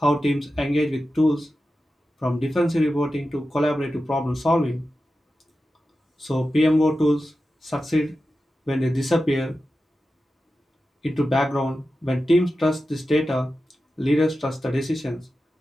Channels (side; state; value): both; normal; correlation 0.92